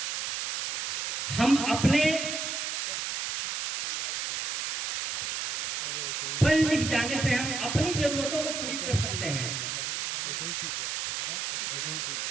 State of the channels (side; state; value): right; noise; hiss, 1 dB below the sound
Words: हम अपने पढ़ लिख जाने से हम अपनी जरूरतों को पूरी कर सकते हैं।